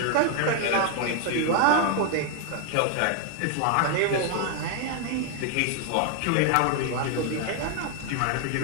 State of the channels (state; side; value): different; both; correlation 0.00